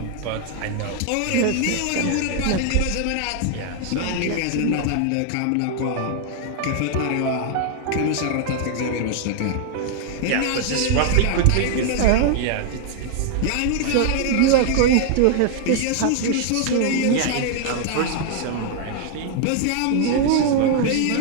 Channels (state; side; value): different; both; correlation 0.00